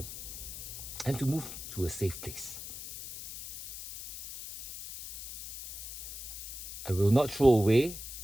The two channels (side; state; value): left; noise; hiss, 10 dB below the sound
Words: and to move to a safe place. I will not throw away